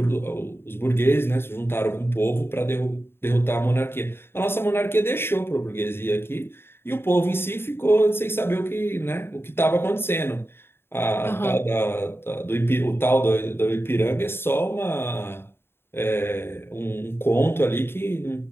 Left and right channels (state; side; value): late; right; 0.11 ms